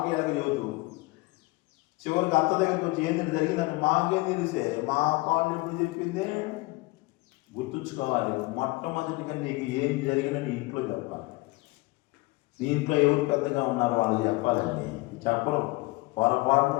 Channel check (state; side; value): quieter; right; 22.4 dB